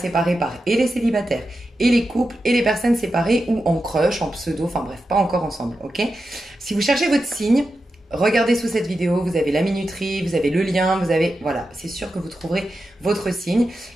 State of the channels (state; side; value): normal; both; correlation 0.90